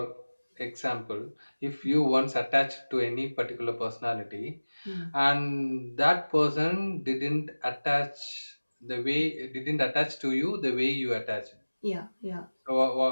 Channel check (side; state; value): both; inverted; correlation -1.00